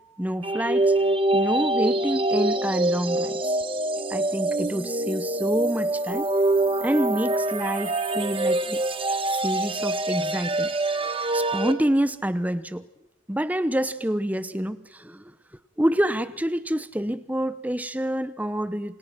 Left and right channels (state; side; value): normal; both; correlation 0.66